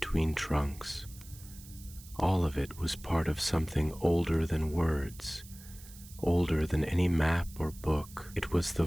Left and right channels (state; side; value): noise; right; hiss, 19 dB below the sound